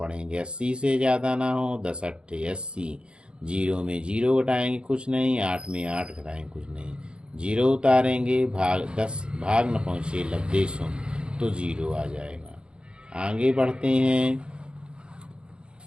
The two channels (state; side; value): late; left; 0.054 ms